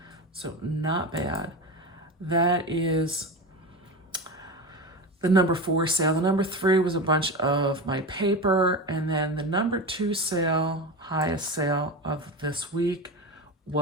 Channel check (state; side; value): normal; both; correlation 0.23